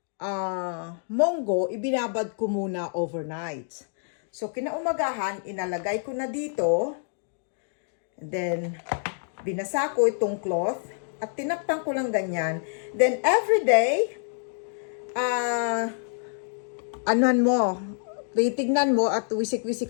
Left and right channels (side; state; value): right; silent; digital silence